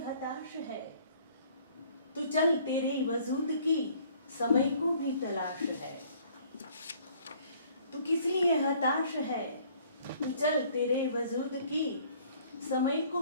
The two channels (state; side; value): inverted; both; correlation -0.58